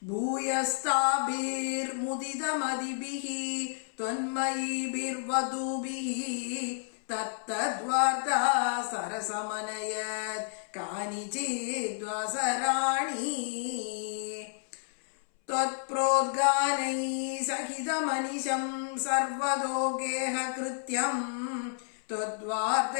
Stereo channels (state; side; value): silent; right; 57 dB below the other